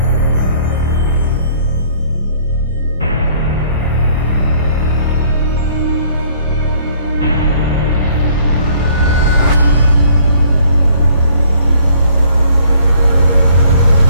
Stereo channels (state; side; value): inverted; both; correlation -0.60